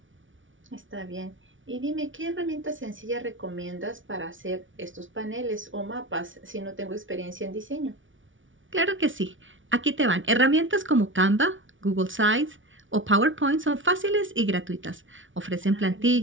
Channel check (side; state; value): left; late; 0.56 ms